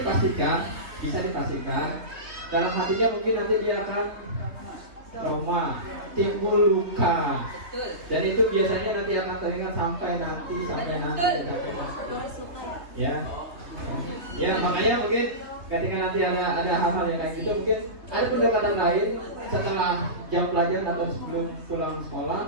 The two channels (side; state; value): left; late; 3.3 ms